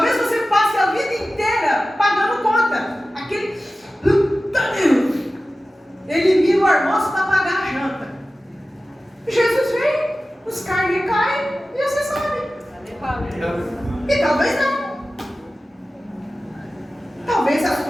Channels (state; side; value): normal; both; correlation 0.95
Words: você passe a vida inteira pagando conta. Aquele... Ele vira o almoço para pagar a janta. Jesus vem, os carnes caem e você sobe. E talvez não. Talvez as